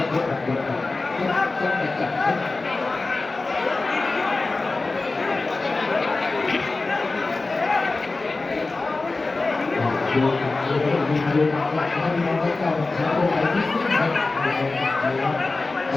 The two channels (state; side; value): quieter; right; 3.5 dB